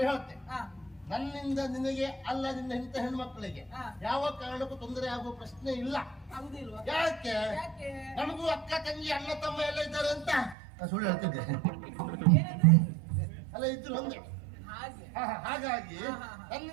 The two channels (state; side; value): drops out; left; at 10.6 s